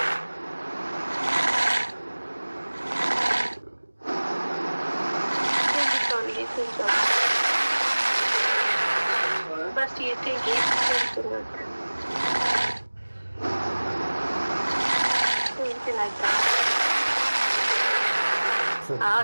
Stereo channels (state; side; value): inverted; both; correlation -1.00